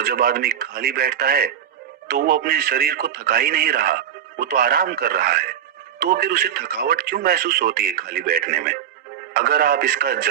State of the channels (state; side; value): quieter; left; 9.4 dB